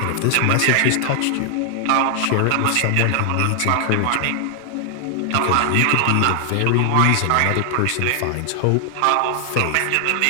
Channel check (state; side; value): different; both; correlation 0.00